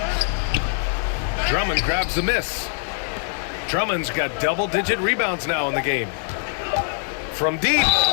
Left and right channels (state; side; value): silent; right; 63 dB below the other